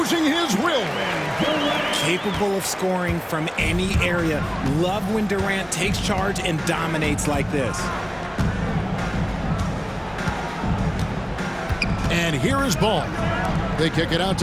his will. Capable of scoring from any area. Love when Durant takes charge and dominates like this. And here is Ball. They kick it out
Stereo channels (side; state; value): both; identical; correlation 1.00